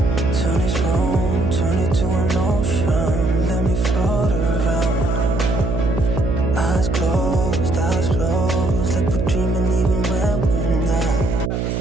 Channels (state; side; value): noise; right; hum, 1 dB below the sound